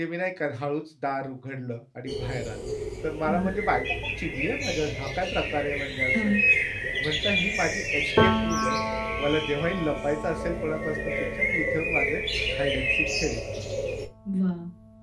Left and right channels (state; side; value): identical; both; correlation 1.00